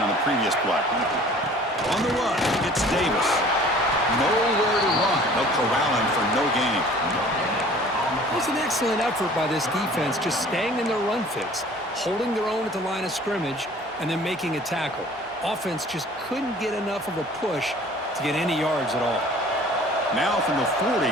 on the previous play. On the run, it's Davis. Nowhere to run. They'll corral him for no gain. It was an excellent effort by this defense, just staying in their run fix, holding their own at the line of scrimmage, and then making a tackle. Offense just couldn't get enough of a push to get any yards at all. Now from the 40,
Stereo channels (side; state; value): both; normal; correlation 0.49